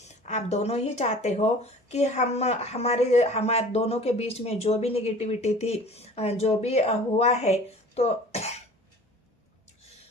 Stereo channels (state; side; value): normal; both; correlation 0.45